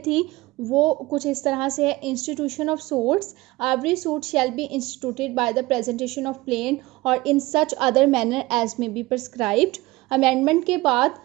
थी वो कुछ इस तरह से है। Institution of suits, every suit shall be instituted by the presentation of plaint or in such other manner as may be prescribed. Amendment के बाद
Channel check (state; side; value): quieter; left; 20.3 dB